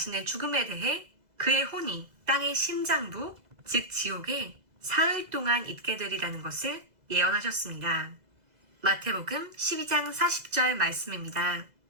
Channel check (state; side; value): late; left; 2.0 ms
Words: 죽음에 대해 그의 혼이 땅의 심장부, 즉 지옥에 사흘 동안 있게 되리라는 것을 예언하셨습니다. 마태복음 12장 40절 말씀입니다.